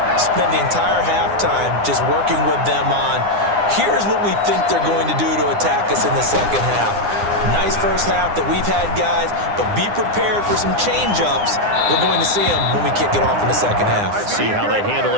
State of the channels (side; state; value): left; late; 9.8 ms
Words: spent the entire halftime just working with them on, here's what we think they're going to do to attack us in the second half. Nice first half that we've had, guys, but be prepared for some change-ups. We're going to see them when we kick it off in the second half. See how they handle